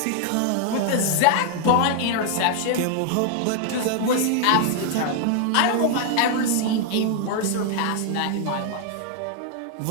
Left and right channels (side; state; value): both; different; correlation 0.00